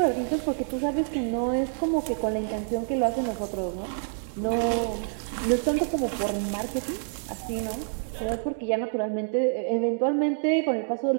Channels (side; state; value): left; silent; digital silence